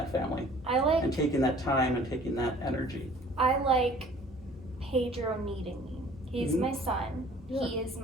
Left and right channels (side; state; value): both; normal; correlation 0.51